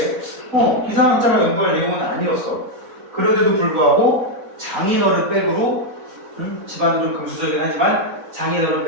기상학자가 연구할 내용은 아니었어. 그런데도 불구하고 장인어른 백으로, 집안은 좀 금수저긴 하지만 장인어른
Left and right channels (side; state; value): both; normal; correlation 0.01